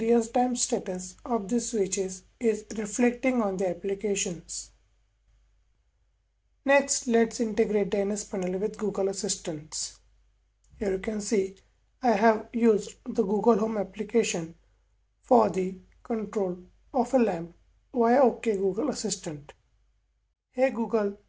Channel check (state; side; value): identical; both; correlation 1.00